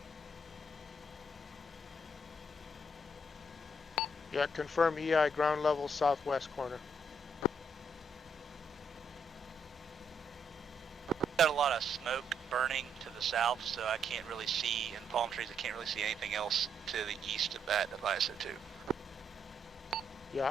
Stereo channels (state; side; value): normal; both; correlation 0.75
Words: Yeah, confirm EI ground level southwest corner. Got a lot of smoke burning to the south, so I can't really see, and palm trees, I can't really see anything else to the east of that of ISO2. Yeah,